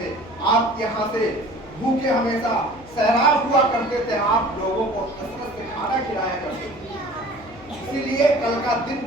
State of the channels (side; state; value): left; noise; hum, 22 dB below the sound